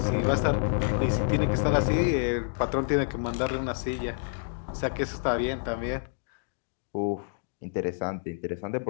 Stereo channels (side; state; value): right; silent; digital silence